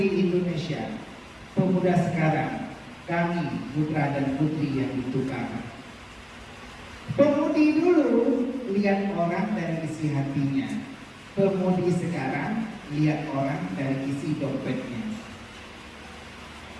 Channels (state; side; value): identical; both; correlation 1.00